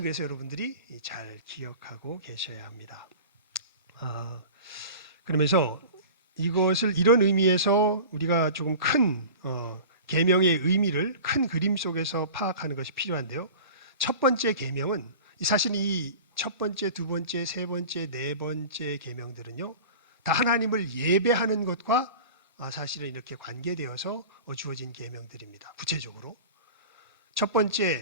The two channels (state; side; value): inverted; both; correlation -0.37